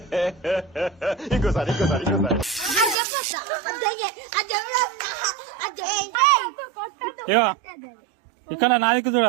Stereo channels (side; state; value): left; drops out; at 3.0 s